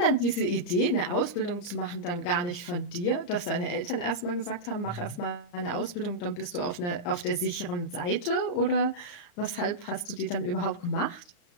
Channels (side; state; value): right; late; 34 ms